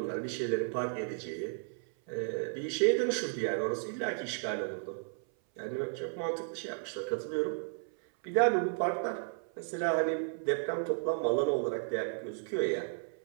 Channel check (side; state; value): left; silent; 55 dB below the other